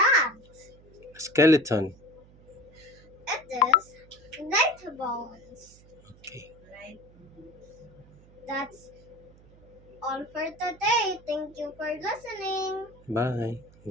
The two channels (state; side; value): noise; right; hum, 24 dB below the sound